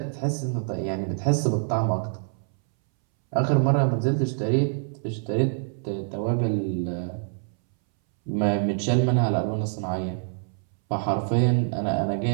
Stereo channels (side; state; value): left; silent; 61 dB below the other